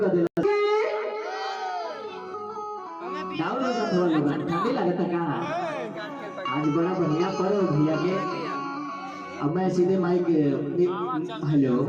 कर देना। ठंडी लगता का आज बड़ा बढ़िया पर्व भैया के। अब मैं सीधे माइक हेलो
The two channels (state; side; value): identical; both; correlation 1.00